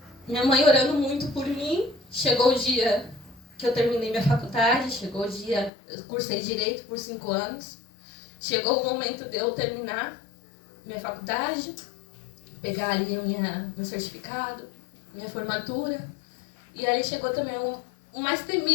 minha mãe orando muito por mim, chegou o dia que eu terminei minha faculdade, chegou o dia, eu cursei Direito por 5 anos. Chegou o momento de eu terminar minha faculdade, pegar ali meu certificado, minha formatura. E ali chegou também o mais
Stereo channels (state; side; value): drops out; right; at 5.7 s